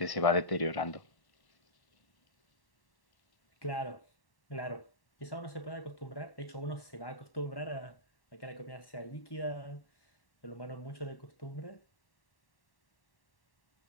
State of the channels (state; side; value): late; right; 1.1 ms